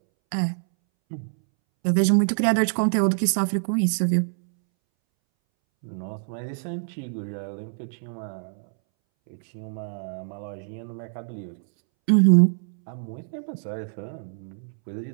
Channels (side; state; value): left; silent; 61 dB below the other